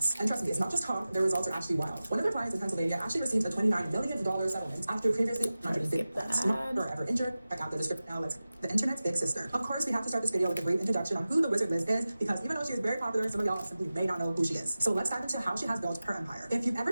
And trust me, it's not just talk, their results are actually wild. One of their clients in Pennsylvania actually received a $29 million settlement after previously 150 not ever injured. Check out the description now. Let's the internet's big sister. Of course, we have to start this video with a brief introduction on who the Wizard Liz is, because even though she is very popular, some of y'all simply may not know who she is. So let's dive into how she has built her empire. If you've ever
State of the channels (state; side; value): inverted; both; correlation -0.96